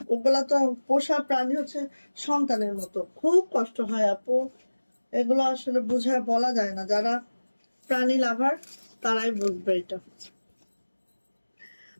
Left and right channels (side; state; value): both; inverted; correlation -1.00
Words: ওগুলা তো পোষা প্রাণী হচ্ছে সন্তানের মতো। খুব কষ্ট হয় আপু, এগুলো আসলে বুঝায় বলা যায় না। যারা প্রাণী লাভার তারাই বুঝবে এটা।